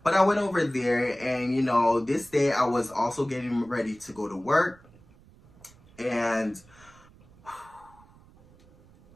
But I went over there, and, you know, this day I was also getting ready to go to work. And,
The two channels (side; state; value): right; noise; rumble, 26 dB below the sound